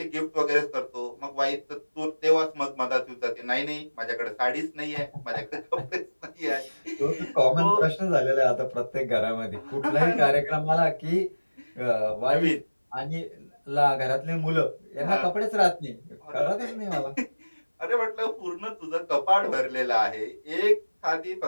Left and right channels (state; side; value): inverted; both; correlation -1.00